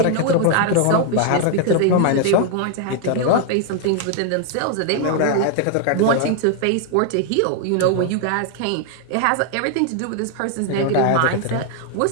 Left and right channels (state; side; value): different; both; correlation 0.00